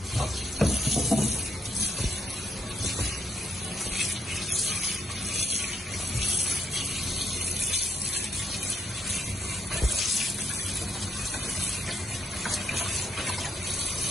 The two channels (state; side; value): normal; both; correlation 0.74